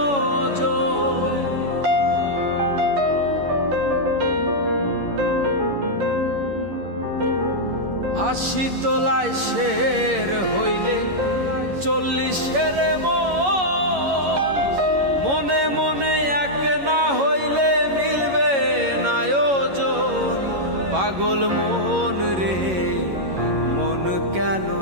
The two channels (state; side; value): late; left; 11 ms